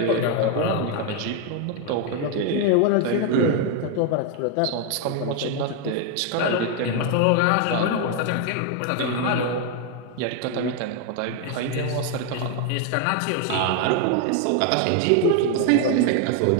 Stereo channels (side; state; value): both; different; correlation 0.01